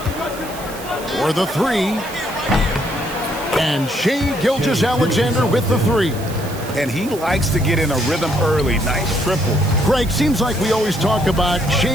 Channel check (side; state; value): right; noise; hiss, 16 dB below the sound